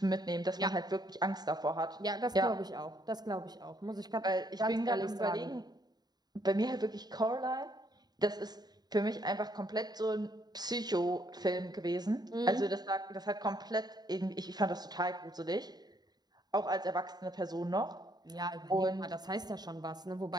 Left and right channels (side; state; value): left; late; 0.20 ms